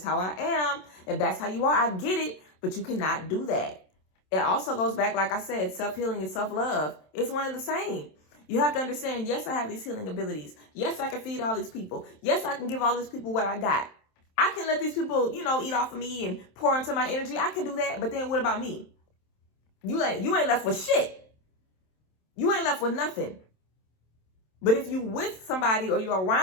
how I am. If that's how you are, I get it. But you cannot do that. It also goes back, like I said, self-healing and self-love. It's one and the same. You have to understand, yes, I have these healing abilities. Yes, I can feed all these people. Yes, I can give all these people what I got. I can let these people, eat off of me and pour into my energy. I can do that. But then what about me? You ain't left with shit. You ain't left with nothing. But if you with somebody or you're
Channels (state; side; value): late; right; 27 ms